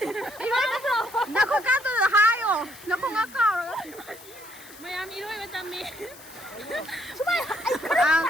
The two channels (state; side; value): noise; left; hiss, 20 dB below the sound